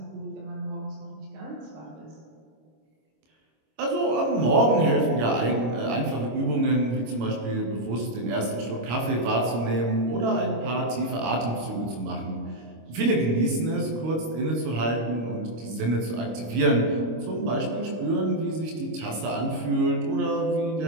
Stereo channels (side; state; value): left; late; 25 ms